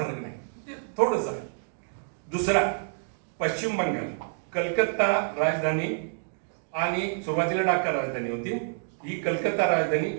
नाही, थोडंच आहे. दुसरा पश्चिम बंगाल, कलकत्ता राजधानी आणि सुरुवातीला ढाका राजधानी होती. ही कलकत्ता राजधानी,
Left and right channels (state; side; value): silent; left; digital silence